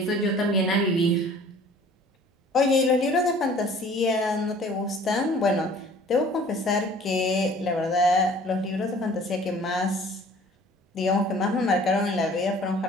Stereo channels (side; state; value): both; normal; correlation 0.51